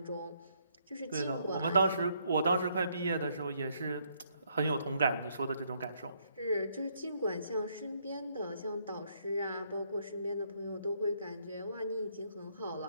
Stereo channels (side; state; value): both; inverted; correlation -0.71